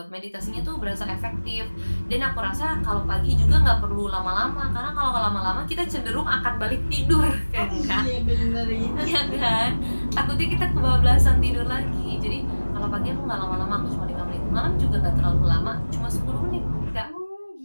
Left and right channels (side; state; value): both; inverted; correlation -1.00